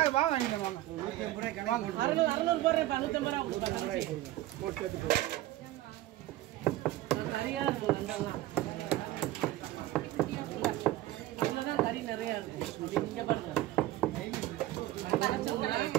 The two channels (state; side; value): quieter; left; 15.6 dB